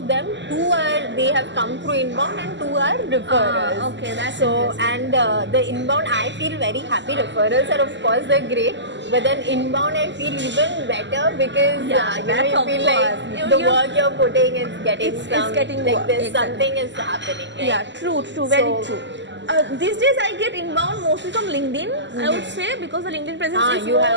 them, 2 they have come through inbound and 2 are referrals. Okay, that's so interesting. and the inbound I feel very happy. Referrals are of course they're great, but then inbound I feel even better because Yeah, you that's you of feel course. like the work you're putting is getting It's some getting like work, this exactly. something is happening. Right? Yeah, true, very So- true. These days I get inbound mostly from LinkedIn, I would say, because the LinkedIn presence is you more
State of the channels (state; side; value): late; left; 0.53 ms